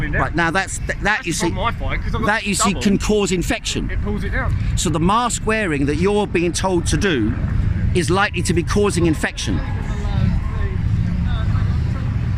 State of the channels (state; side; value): identical; both; correlation 1.00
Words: down. Right now, that you see, that you see can cause infection. It pulls it down. So the mask wearing that you're being told to do is likely to be causing infection.